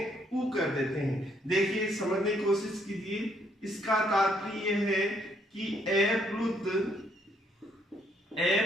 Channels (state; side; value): normal; both; correlation 0.70